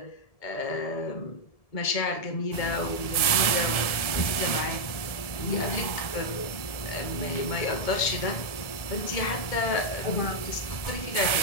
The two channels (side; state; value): right; late; 1.7 ms